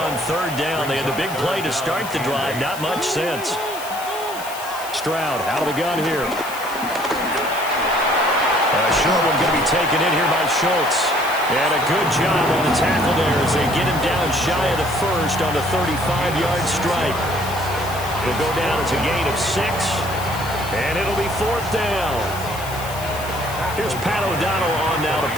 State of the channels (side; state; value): left; noise; hiss, 13 dB below the sound